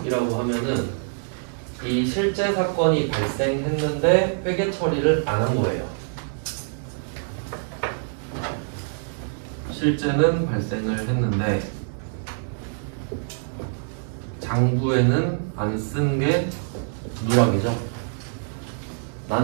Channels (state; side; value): silent; left; digital silence